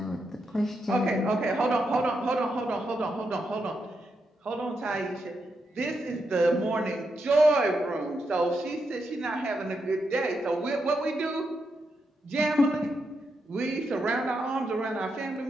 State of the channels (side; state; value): both; normal; correlation 0.83